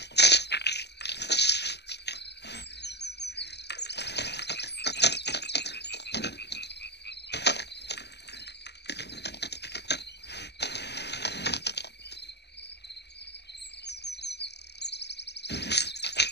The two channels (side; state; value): right; late; 0.49 ms